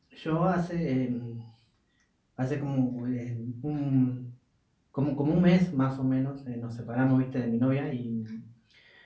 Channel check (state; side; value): identical; both; correlation 1.00